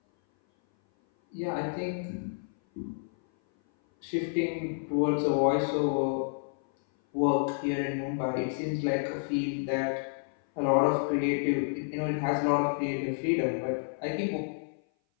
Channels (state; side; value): silent; right; 56 dB below the other